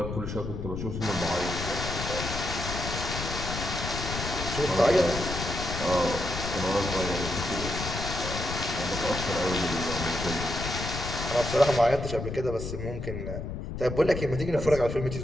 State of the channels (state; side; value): noise; left; rumble, 5 dB below the sound